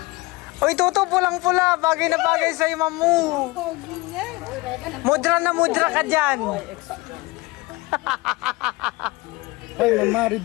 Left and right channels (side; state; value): right; quieter; 22.6 dB